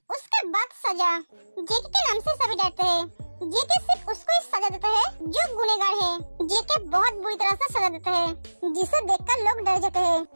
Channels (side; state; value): both; inverted; correlation -1.00